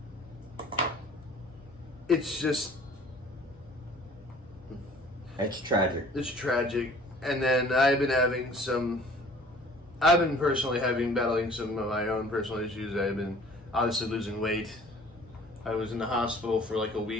it's just It's tragic. It's tragic. And then I've been personally battling some of my own personal issues. I've been obviously losing weight. I was in the hospital for like a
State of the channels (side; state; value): both; normal; correlation 0.51